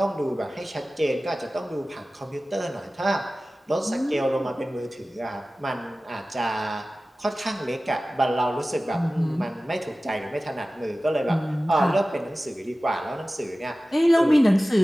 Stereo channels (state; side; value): normal; both; correlation 0.96